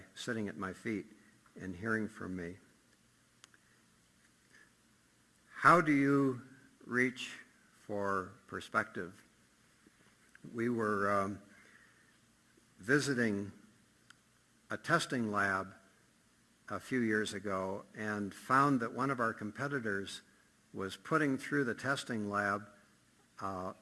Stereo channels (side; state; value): both; identical; correlation 1.00